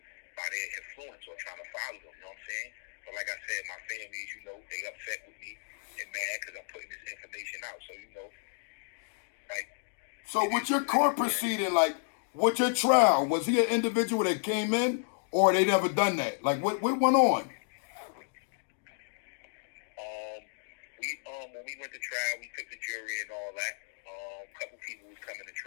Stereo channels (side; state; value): right; silent; digital silence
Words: by their influence or trying to follow them. You know what I'm saying? But like I said, my family, you know, they upset with me and mad because I'm putting this information out. So, you know, like. So with your court proceeding, like with your trial, was he an individual that came in or they never done that? Like what went on? When we went to trial, we took the jury and all that. A couple people was coming to